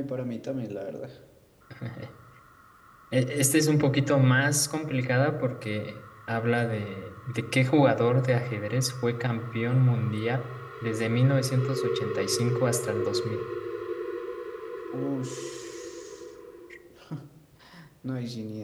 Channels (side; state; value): both; identical; correlation 1.00